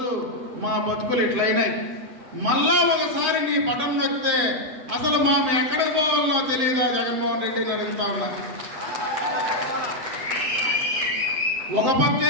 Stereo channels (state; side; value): late; left; 7.6 ms